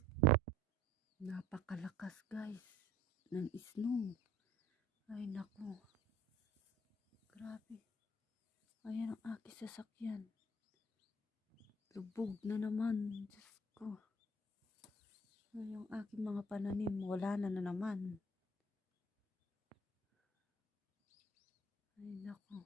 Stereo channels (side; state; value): both; normal; correlation 0.53